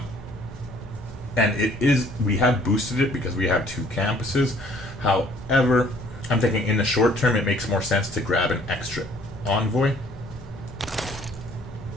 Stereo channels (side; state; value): both; normal; correlation 0.59